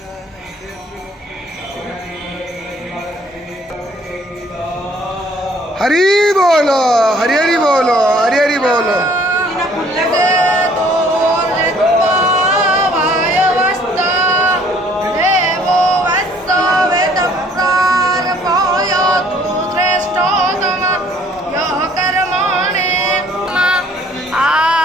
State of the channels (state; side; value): normal; both; correlation 0.59